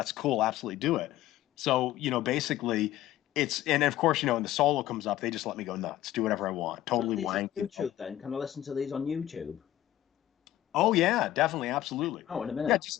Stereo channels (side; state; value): right; quieter; 13.8 dB